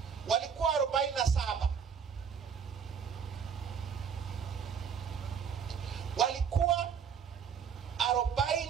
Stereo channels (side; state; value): left; quieter; 7.1 dB